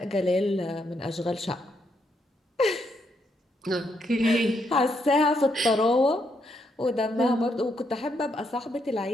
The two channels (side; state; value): both; normal; correlation 0.77